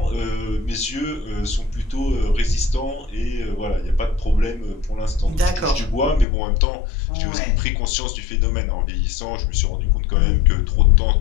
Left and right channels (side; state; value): right; drops out; at 6.2 s